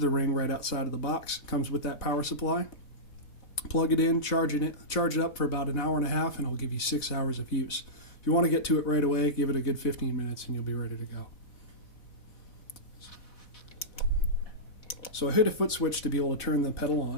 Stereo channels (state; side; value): late; right; 4.1 ms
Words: ring right outside of the box. It comes with that power supply. Plug it in, charge it up for about an hour and a half, and it'll give you 6 hours of use. If you want to get to it right away, give it a good 15 minutes and you'll be ready to go. So I hit a foot switch to be able to turn the pedal